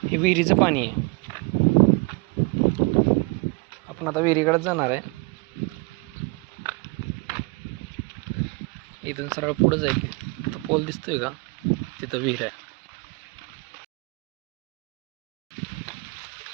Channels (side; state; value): left; quieter; 28.1 dB